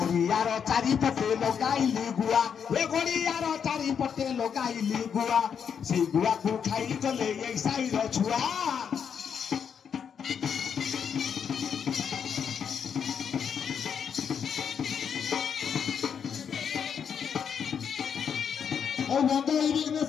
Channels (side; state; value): right; quieter; 7.4 dB